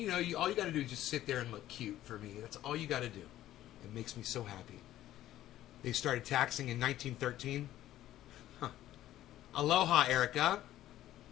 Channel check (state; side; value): quieter; right; 13.6 dB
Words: know, all you got to do is just sit there and look cute for me. That's all you got to do. It makes me so happy. They started taxing in 1913. Huh. Aloha, Erica.